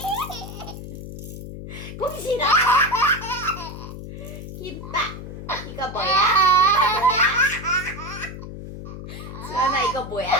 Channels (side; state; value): left; noise; hum, 10 dB below the sound